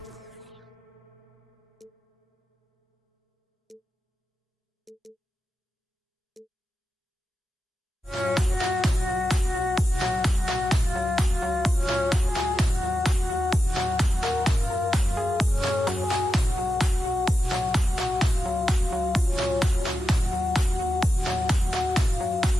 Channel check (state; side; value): normal; both; correlation 0.90